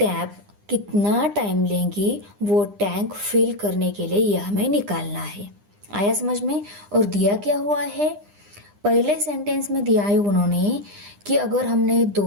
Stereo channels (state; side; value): late; left; 9.9 ms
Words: कितना time लेंगी वो tank fill करने के लिए यह हमें निकालना है। आया समझ में। और दिया क्या हुआ है, पहले सेंटेंस में दिया है उन्होंने कि अगर हमने